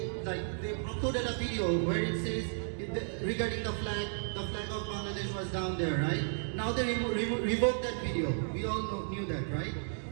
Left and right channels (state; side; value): silent; left; digital silence